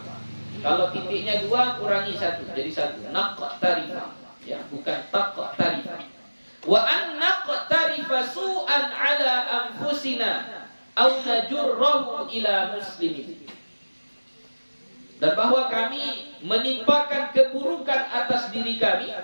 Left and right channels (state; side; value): inverted; both; correlation -1.00